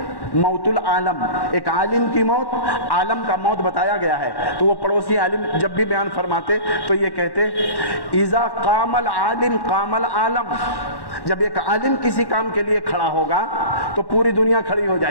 موت العالم، ایک عالم کی موت، عالم کا موت بتایا گیا ہے۔ تو وہ پڑوسی عالم جب بھی بیان فرماتے تو یہ کہتے اذا قام العالم قام العالم، جب ایک عالم کسی کام کے لیے کھڑا ہوگا تو پوری دنیا کھڑی ہو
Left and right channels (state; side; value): late; right; 1.1 ms